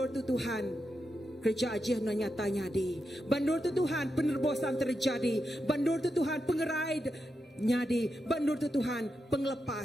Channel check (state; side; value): normal; both; correlation 0.86